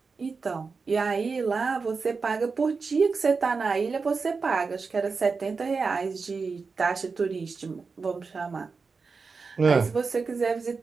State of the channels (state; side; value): quieter; left; 4.7 dB